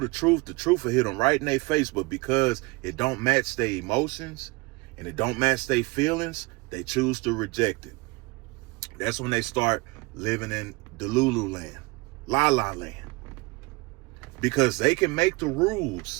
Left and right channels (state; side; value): quieter; left; 25.5 dB